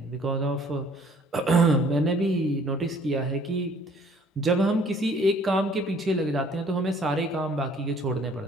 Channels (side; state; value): both; normal; correlation 0.57